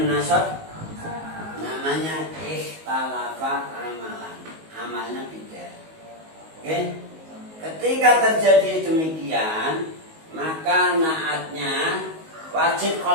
Namanya ikhtalafa amalan. Amalnya beda. Oke? Ketika terjadi demikian, maka naatnya wajib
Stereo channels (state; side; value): late; left; 19 ms